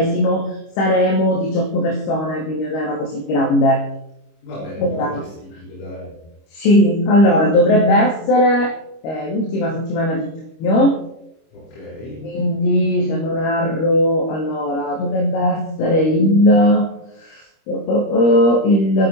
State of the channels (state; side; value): late; right; 25 ms